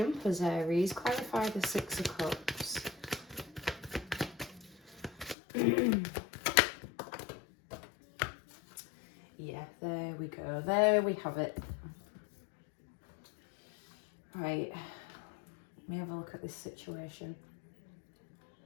Aries. Clarify the 6 of Cups. Yeah, there we go. There we have it. Right. Let me have a look at this situation.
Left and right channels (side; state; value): right; drops out; at 5.4 s